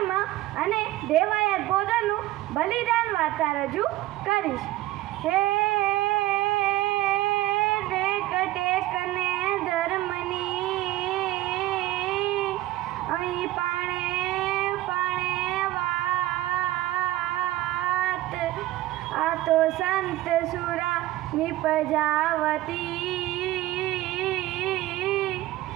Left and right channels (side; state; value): left; quieter; 16.2 dB